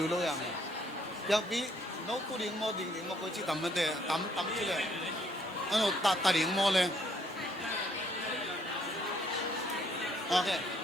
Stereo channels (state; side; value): normal; both; correlation 0.67